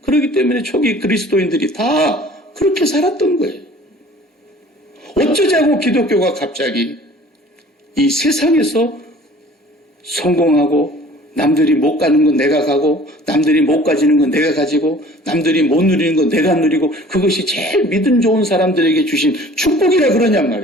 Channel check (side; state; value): both; normal; correlation 0.49